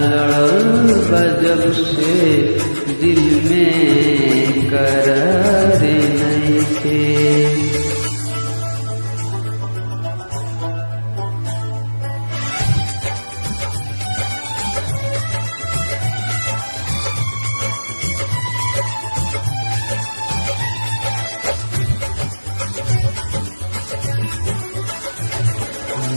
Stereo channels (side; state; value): both; inverted; correlation -1.00